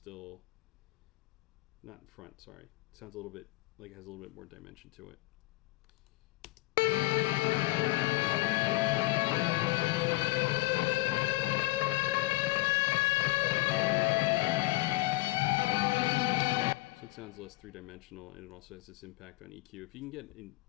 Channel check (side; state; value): right; quieter; 20.9 dB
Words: not in front, sorry. It sounds a little bit like it has a little bit more dimension to it. So it sounds less three-dimensional, and it also has this impact on EQ. If you can